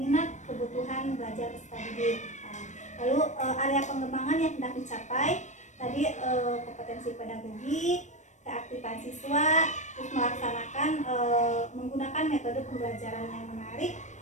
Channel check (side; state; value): right; late; 0.35 ms